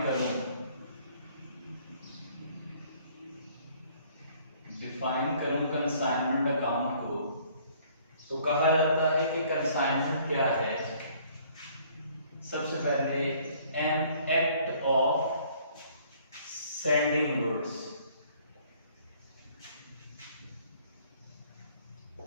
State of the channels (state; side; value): inverted; both; correlation -0.59